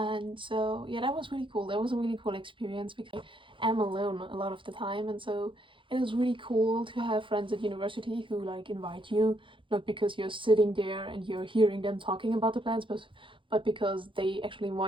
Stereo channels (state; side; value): late; left; 0.25 ms